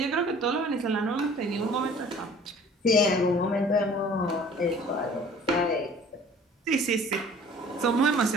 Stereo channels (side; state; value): both; normal; correlation 0.50